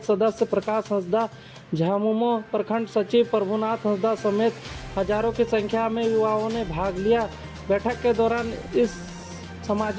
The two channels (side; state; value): both; identical; correlation 1.00